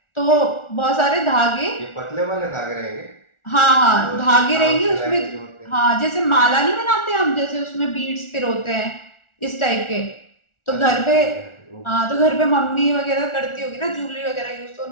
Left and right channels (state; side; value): late; right; 1.4 ms